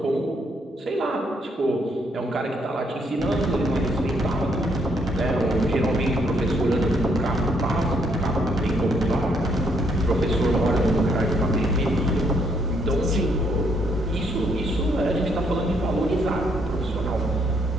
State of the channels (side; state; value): both; normal; correlation 0.72